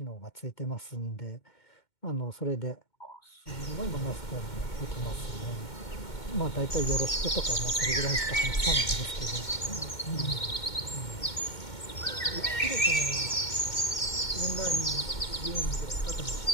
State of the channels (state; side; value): late; right; 2.2 ms